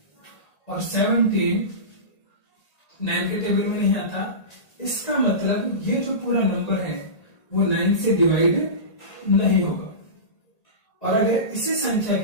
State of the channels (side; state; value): right; late; 1.8 ms